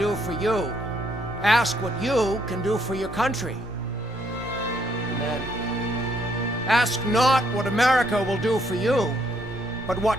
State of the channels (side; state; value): both; normal; correlation 0.71